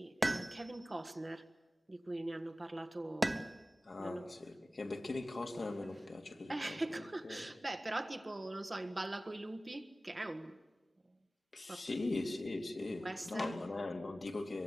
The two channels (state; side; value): normal; both; correlation 0.96